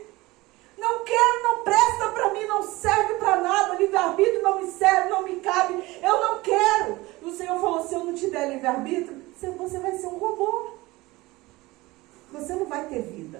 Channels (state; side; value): quieter; left; 20.6 dB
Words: Não quero, não presta para mim, não serve para nada. Livre-arbítrio não me serve, não me cabe. Eu não quero. E o Senhor falou, se eu não te der livre-arbítrio, você vai ser um robô. Você não vai ter